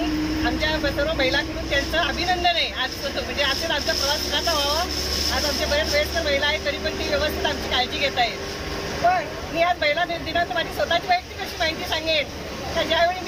आमच्या सर्व महिलांकडून त्यांचं अभिनंदन आहे. आज म्हणजे आज आमचा प्रवास सुखाचा व्हावा. आज आमच्या बऱ्याच वयस्कर महिला आहेत, तरी पण ती व्यवस्थित आमची काळजी घेत आहेत. पण मी आज महिला दिनांत माझी स्वतःची वैयक्तिक अशी माहिती सांगेन. तर ज्यावेळी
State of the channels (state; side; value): identical; both; correlation 1.00